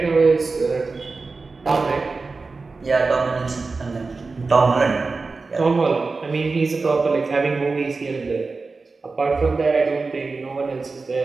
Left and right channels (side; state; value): left; quieter; 4.0 dB